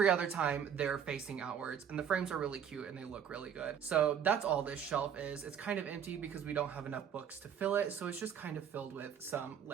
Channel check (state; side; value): quieter; left; 8.3 dB